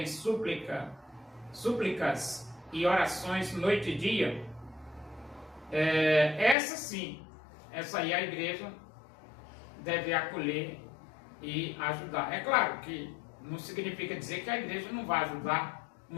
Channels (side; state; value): right; drops out; at 6.6 s